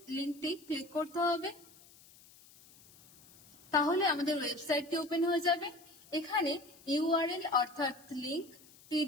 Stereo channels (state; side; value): noise; left; hiss, 24 dB below the sound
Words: লিঙ্কটি ক্লিক করতে হবে, তাহলে আমাদের ওয়েবসাইটটি ওপেন হয়ে যাবে। এখানে ইউআরএল অর্থাৎ লিঙ্ক,